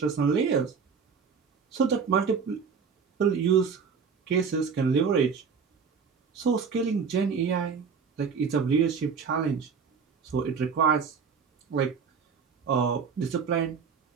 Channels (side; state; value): left; quieter; 6.0 dB